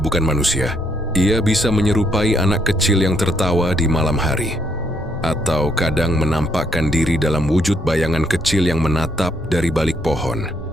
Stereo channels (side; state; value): both; normal; correlation 0.72